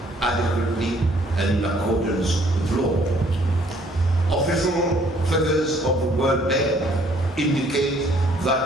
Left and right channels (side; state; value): both; normal; correlation 0.62